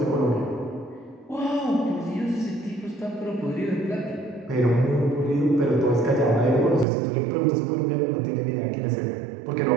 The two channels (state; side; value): drops out; left; at 6.9 s